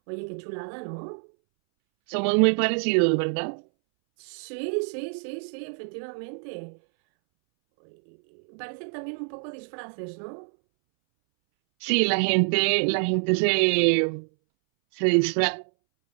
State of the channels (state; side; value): silent; left; 61 dB below the other